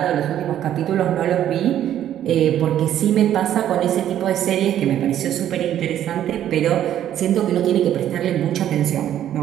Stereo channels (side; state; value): left; quieter; 11.2 dB